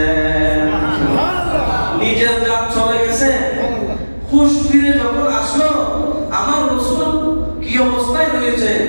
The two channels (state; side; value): inverted; both; correlation -1.00